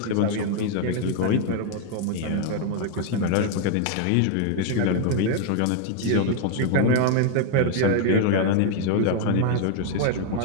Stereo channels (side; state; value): both; different; correlation 0.00